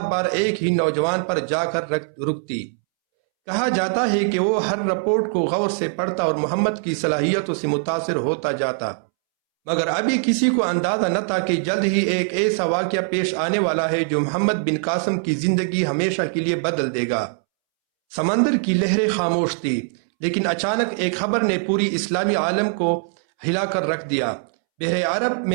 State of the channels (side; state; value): left; silent; 64 dB below the other